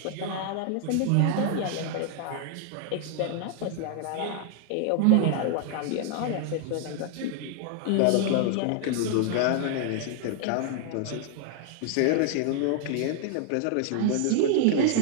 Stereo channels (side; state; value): both; different; correlation 0.00